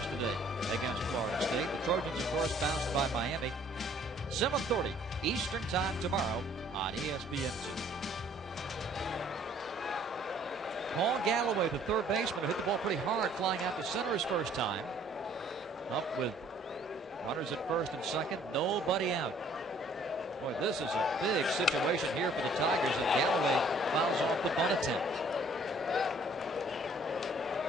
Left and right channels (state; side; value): normal; both; correlation 0.59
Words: against Florida State. The Trojans, of course, bounced by Miami. 7:30 Eastern Time tomorrow on ESPN2. Paul Galloway, the third baseman, who hit the ball pretty hard flying out to center his first time. Up with runners at first and second, nobody out. Boy, this is a big situation here for the Tigers, and Galloway fouls off the bunt attempt.